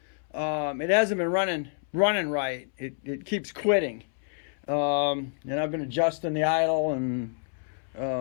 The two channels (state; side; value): silent; right; 59 dB below the other